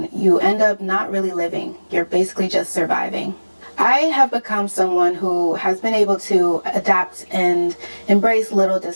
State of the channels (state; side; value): inverted; both; correlation -1.00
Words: you end up not really living. You're basically just surviving. I have become someone who has been able to adapt and embrace little